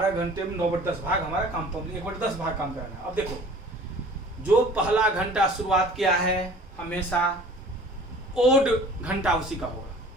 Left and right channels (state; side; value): normal; both; correlation 0.47